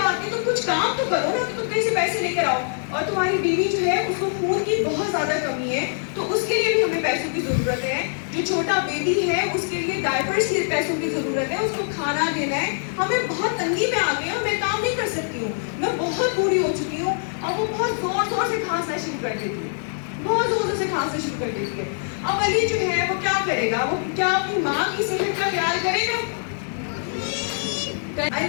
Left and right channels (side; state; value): right; silent; digital silence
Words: नहीं, तुम कुछ काम तो करो ना, तो तुम कहीं से पैसे लेकर आओ। और तुम्हारी बीवी जो है उसको खून की बहुत ज़्यादा कमी है तो उसके लिए भी हमें पैसों की ज़रूरत है, जो छोटा बेबी है उसके लिए डायपर्स के पैसों की ज़रूरत है, उसको खाना देना है, हमें बहुत तंगी में आ गए हैं, मैं काम नहीं कर सकती हूँ, मैं बहुत बूढ़ी हो चुकी हूँ। और वो बहुत ज़ोर से खांसना शुरू कर देती है, बहुत ज़ोर से खांसना शुरू कर देती है। अब अली जो है वो क्या करेगा, वो क्या अपनी माँ की सेहत का ख्याल करेगा?